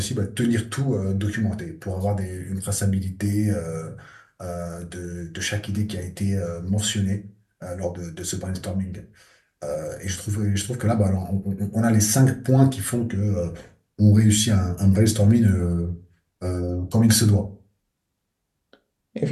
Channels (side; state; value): both; identical; correlation 1.00